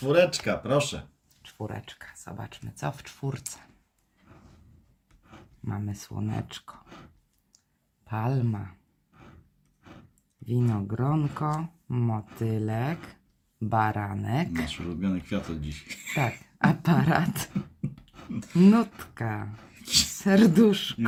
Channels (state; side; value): identical; both; correlation 1.00